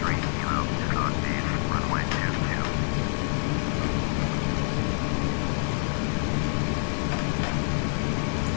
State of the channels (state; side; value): silent; right; 60 dB below the other